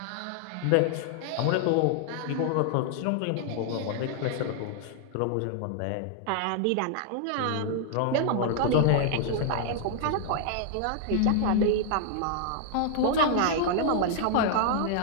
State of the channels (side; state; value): both; different; correlation -0.01